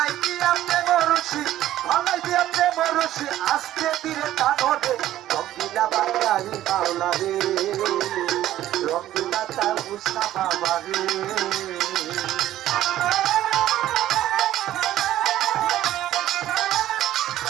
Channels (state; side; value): quieter; left; 13.3 dB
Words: দিয়া প্রেম রশি, গলাই দিয়া প্রেম রশি, আজকে দিলে কানবে রঙ্গিলা বাঙালি মাওলা রে, রঙ্গিলা তয়বসা বাবা রে।